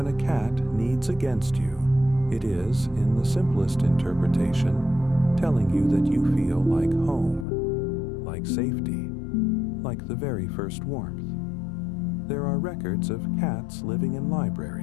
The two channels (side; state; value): right; drops out; at 7.5 s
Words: a cat kneads against you, it is, in the simplest interpretation, telling you that you feel like home, like safety, like the very first warmth. There are records of cats living in